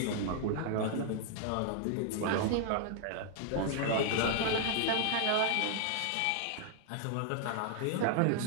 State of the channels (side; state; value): both; different; correlation -0.01